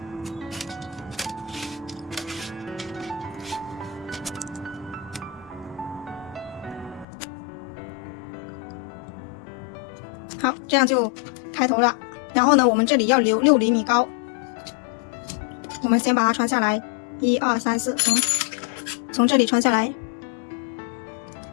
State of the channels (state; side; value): drops out; right; at 7.1 s